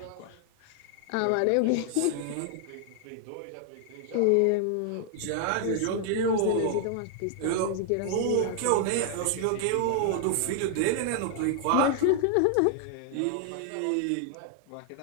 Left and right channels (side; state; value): both; different; correlation 0.00